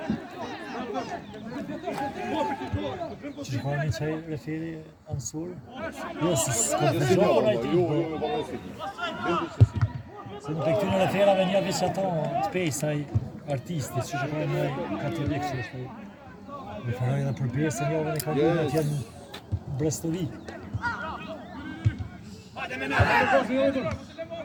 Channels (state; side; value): identical; both; correlation 1.00